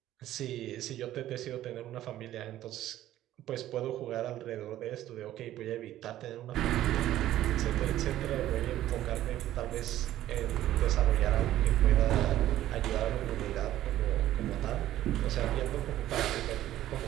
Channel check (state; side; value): quieter; left; 13.4 dB